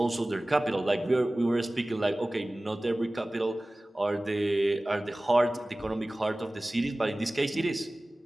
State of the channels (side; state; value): both; normal; correlation 0.98